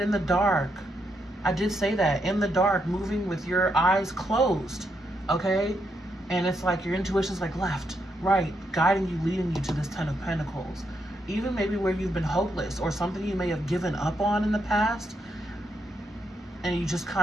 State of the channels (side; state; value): both; normal; correlation 0.80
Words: in the dark. I did say that. In the dark, moving with your eyes closed. Okay? And it's like your intuition's like left, right, guiding you, leading you to this 10 of Pentacles. Even maybe where you've been hopeless or something you may have given up on in the past, and you just